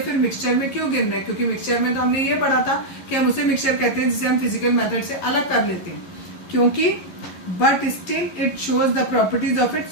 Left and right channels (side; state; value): right; late; 11 ms